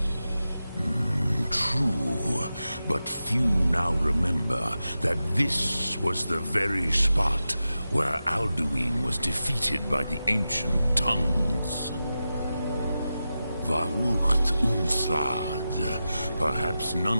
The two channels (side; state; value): both; inverted; correlation -0.92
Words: True, but few now remember that this was the very spot where Alduin was defeated by the ancient tongues. Varucht Unslad. Perhaps